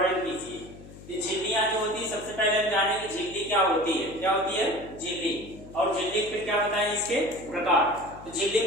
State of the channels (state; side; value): noise; left; hum, 17 dB below the sound